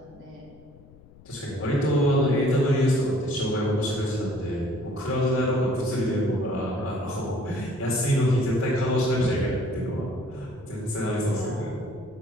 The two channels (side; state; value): left; noise; rumble, 23 dB below the sound